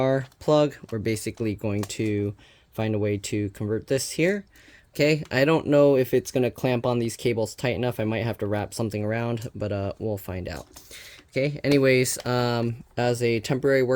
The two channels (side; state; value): both; identical; correlation 1.00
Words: plug. We're basically going to find a way to convert this here. Okay, I don't know if it's going to clamp on these cables tight enough. I might have to wrap something around, but we'll find out. Okay, anyways, as a temporary